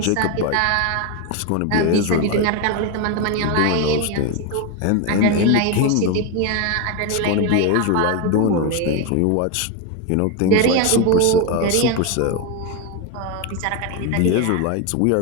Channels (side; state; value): both; different; correlation 0.02